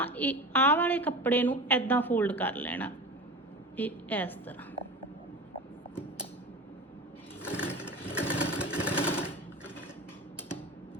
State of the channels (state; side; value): normal; both; correlation 0.31